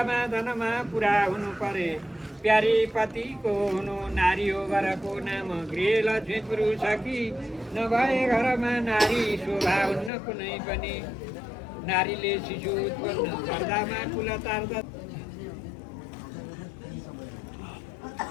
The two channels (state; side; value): drops out; right; at 10.1 s